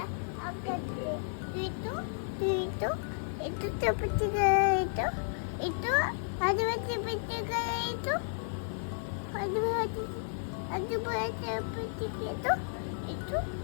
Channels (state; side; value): silent; right; digital silence